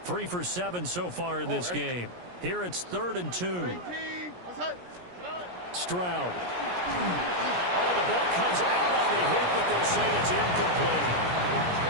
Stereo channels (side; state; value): left; late; 17 ms